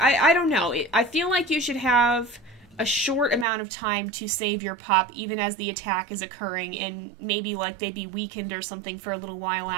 don't know, I feel like you should have a short amount of time to save your pup even as the attack is occurring, and maybe like they'd be weakened or something for a little while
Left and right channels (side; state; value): left; drops out; at 3.5 s